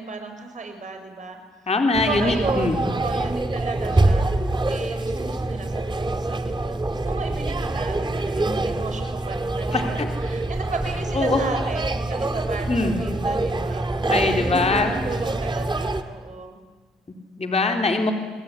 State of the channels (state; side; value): normal; both; correlation 0.74